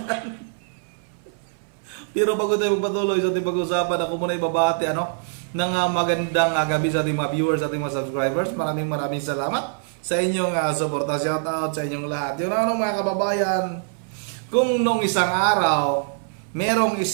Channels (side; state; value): left; silent; 59 dB below the other